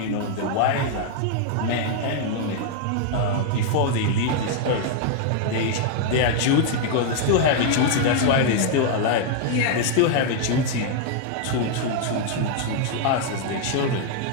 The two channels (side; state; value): both; different; correlation 0.00